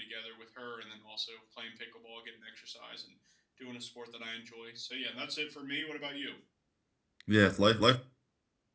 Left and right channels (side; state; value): both; identical; correlation 1.00